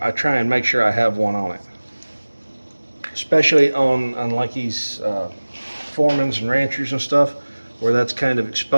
try and make sure I have one on it. Especially on like these Foremans and Ranchers and stuff, where that's kind of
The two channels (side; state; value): both; inverted; correlation -1.00